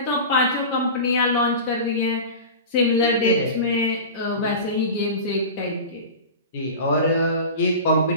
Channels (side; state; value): both; inverted; correlation -0.30